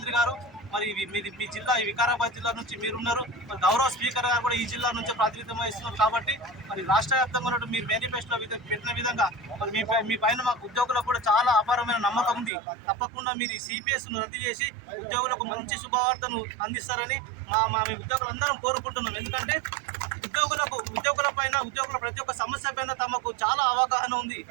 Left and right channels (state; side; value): drops out; left; at 12.5 s